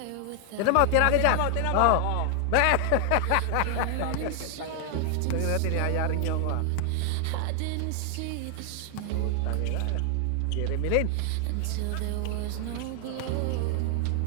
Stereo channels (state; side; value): different; both; correlation 0.00